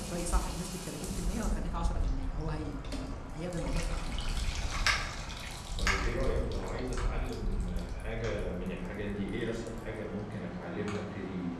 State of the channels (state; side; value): identical; both; correlation 1.00